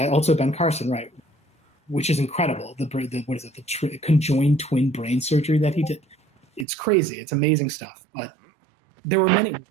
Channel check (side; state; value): left; drops out; at 6.7 s